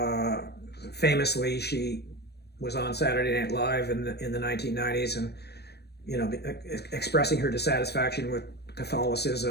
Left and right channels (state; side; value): late; right; 0.47 ms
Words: Famously, she was on Saturday Night Live in the 1990s, and you know, expressing her dissatisfaction with